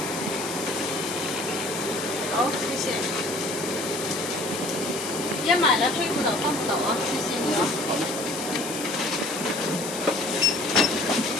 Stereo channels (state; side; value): noise; left; hiss, 8 dB below the sound